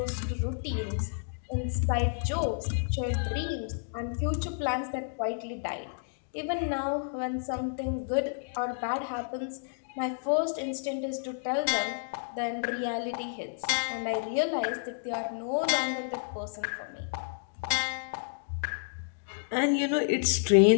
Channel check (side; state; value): right; silent; digital silence